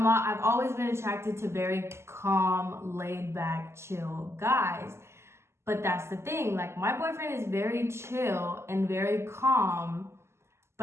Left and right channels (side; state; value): left; late; 0.13 ms